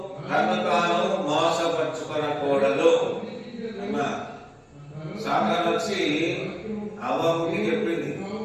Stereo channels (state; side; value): identical; both; correlation 1.00